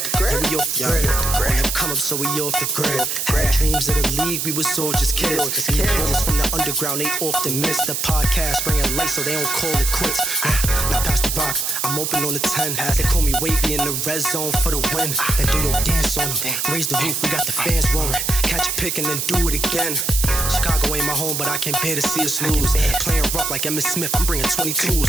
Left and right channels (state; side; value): noise; right; hiss, 1 dB below the sound